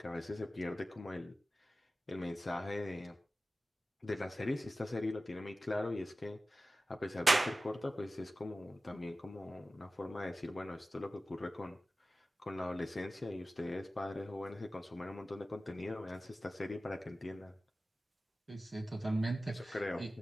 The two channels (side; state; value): both; normal; correlation 0.95